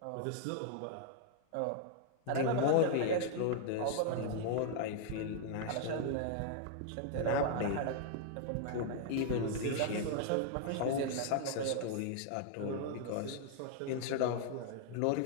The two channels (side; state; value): both; different; correlation -0.01